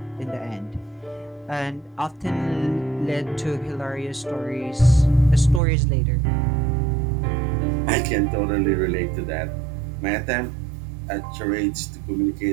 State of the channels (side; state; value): left; drops out; at 5.6 s